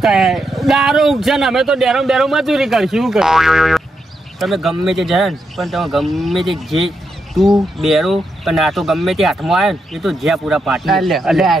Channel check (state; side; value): normal; both; correlation 0.83